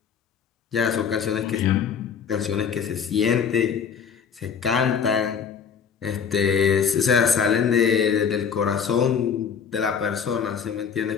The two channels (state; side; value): quieter; right; 6.9 dB